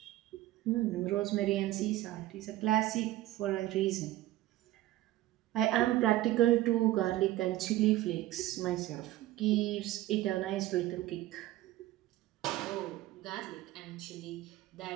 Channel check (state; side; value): quieter; left; 15.7 dB